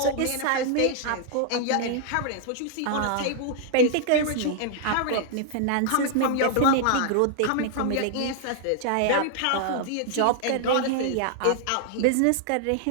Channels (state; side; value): different; both; correlation 0.00